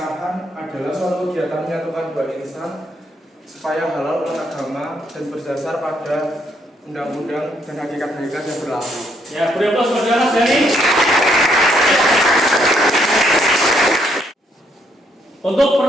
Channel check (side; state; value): both; normal; correlation 0.72